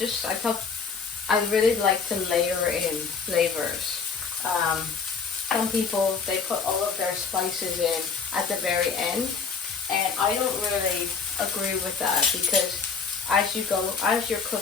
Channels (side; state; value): right; quieter; 5.4 dB